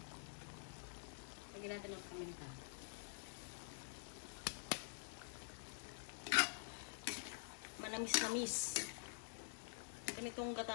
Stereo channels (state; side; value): silent; right; digital silence